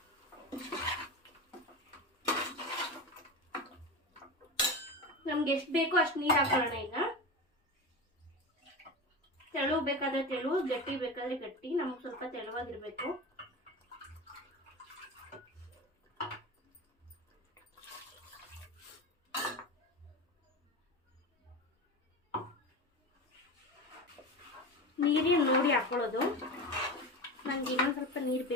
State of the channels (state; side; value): normal; both; correlation 0.25